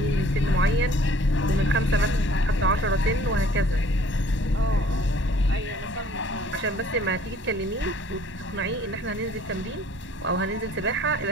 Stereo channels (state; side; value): normal; both; correlation 0.55